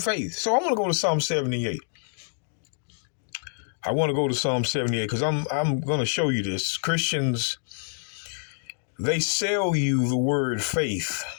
So I'm going to go to Psalm 78. I want to go to Psalm 78 because I'm going to show you this. Christians, They sell you the word faith,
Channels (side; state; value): right; silent; digital silence